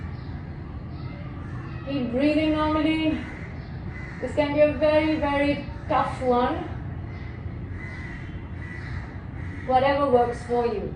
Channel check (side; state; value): both; identical; correlation 1.00